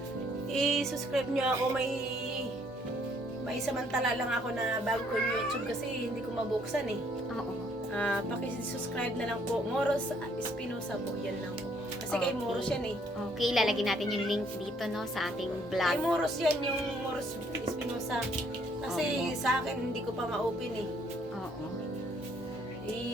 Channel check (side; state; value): both; normal; correlation 0.65